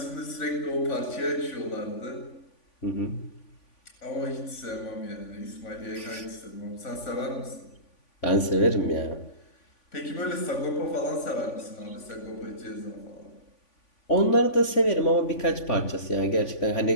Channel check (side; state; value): right; late; 3.5 ms